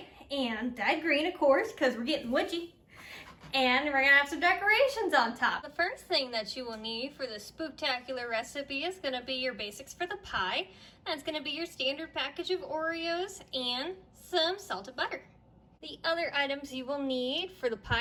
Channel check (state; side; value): identical; both; correlation 1.00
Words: and dyed green, of course, because we're getting witchy. And we're going to have some decorations on top. The first thing that you will need for the spooktacular recipe is going to be your basics for the pie. That's going to be your standard package of Oreos and some salted butter. The other items you will need for the